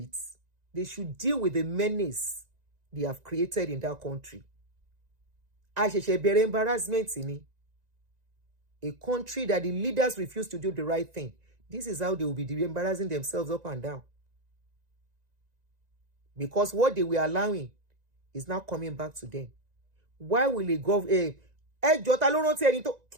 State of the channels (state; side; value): late; left; 1.9 ms